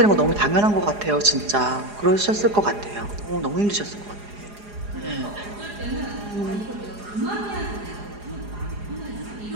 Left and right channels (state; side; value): late; left; 4.9 ms